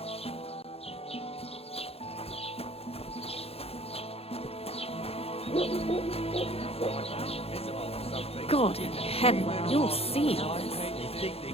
God in heaven, you'll see all this. They think they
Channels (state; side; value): late; right; 0.29 ms